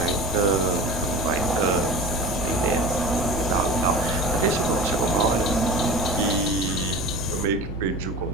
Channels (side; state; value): right; noise; rumble, 12 dB below the sound